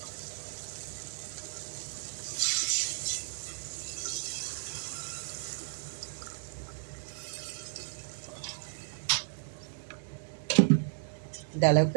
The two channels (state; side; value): silent; left; digital silence